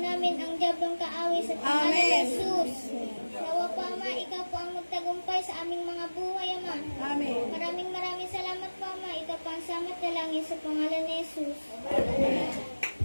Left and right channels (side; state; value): both; inverted; correlation -1.00